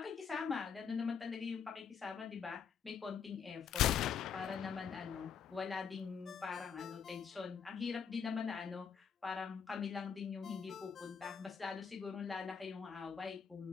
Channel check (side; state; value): right; quieter; 6.8 dB